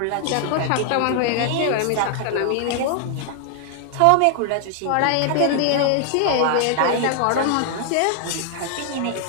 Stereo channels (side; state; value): both; different; correlation 0.00